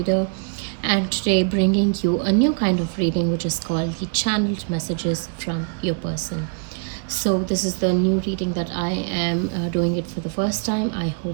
and today bringing you a new kind of reading which is called the channeled messages from your person. So this is the new reading that I am doing it for the first time. I hope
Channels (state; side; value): quieter; left; 37.3 dB